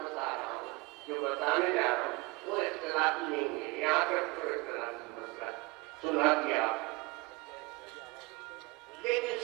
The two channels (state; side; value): quieter; left; 25.1 dB